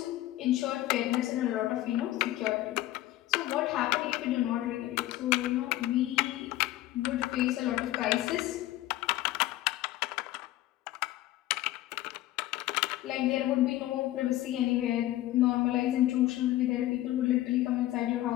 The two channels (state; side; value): quieter; right; 15.4 dB